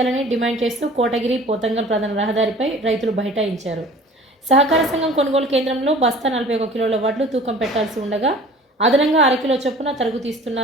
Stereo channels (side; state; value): both; normal; correlation 0.46